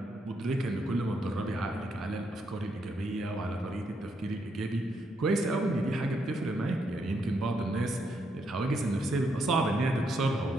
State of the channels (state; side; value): normal; both; correlation 0.77